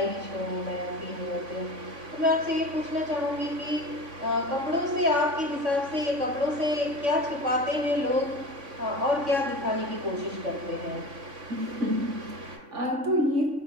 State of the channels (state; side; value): late; left; 3.5 ms